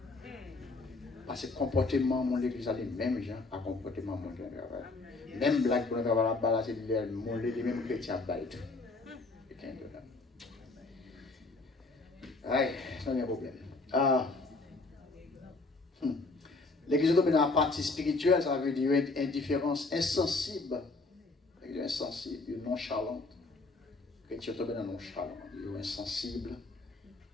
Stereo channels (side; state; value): right; quieter; 3.5 dB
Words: Parce que le comportement de l'église a les mêmes gens à comportement de mon travail. Même blague pour nous travailler là-bas, c'est les mêmes chrétiens à tout. Aïe, ça n'est pas un problème. L'église domine la partie spirituelle, ça veut dire une indifférence insensible, insensible, nonchalante. Chrétien tombe dans nonchalant, il est insensible,